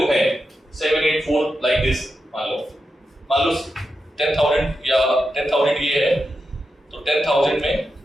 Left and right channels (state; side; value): normal; both; correlation 0.88